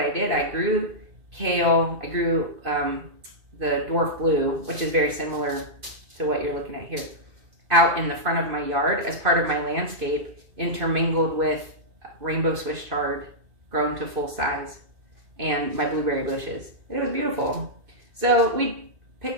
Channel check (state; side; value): late; left; 2.5 ms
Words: did. I grew kale. I grew the Dwarf blue, which is very similar to what you're looking at here, out in the front of my yard as part of my landscape, intermingled with rainbow Swiss chard grown to full size and my blueberry bushes. It was beautiful. So we